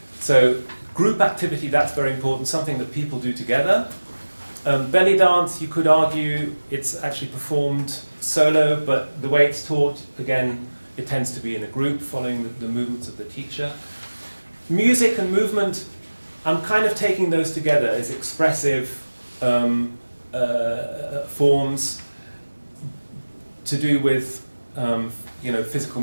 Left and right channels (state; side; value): inverted; both; correlation -1.00